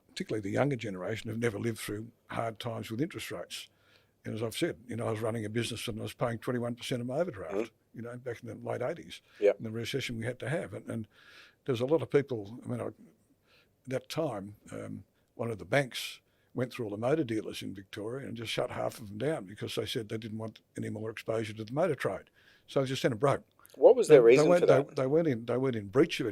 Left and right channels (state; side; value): identical; both; correlation 1.00